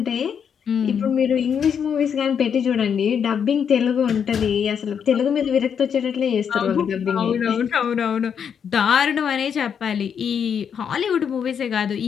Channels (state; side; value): quieter; right; 7.5 dB